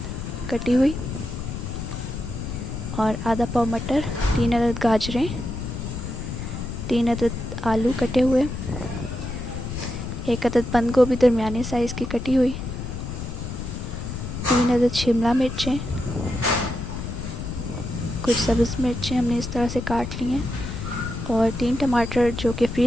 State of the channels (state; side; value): noise; left; rumble, 6 dB below the sound